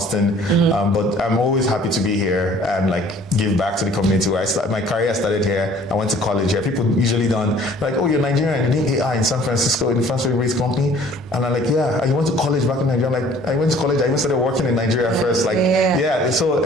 but I'm always happy to be here and give back to the community. My career started here. I went to college here. People usually don't oh, you're Nigerian. You need AI in San Francisco in the Francis-based company, and I'm yeah. You went to college back in Nigeria. I'm I went to college. I even started working in Nigeria first. So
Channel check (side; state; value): both; normal; correlation 0.53